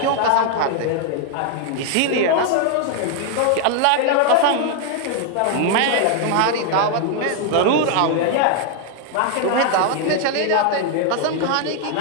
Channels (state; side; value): different; both; correlation 0.00